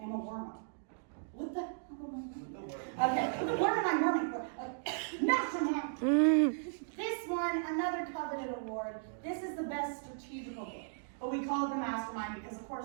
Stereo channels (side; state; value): left; silent; digital silence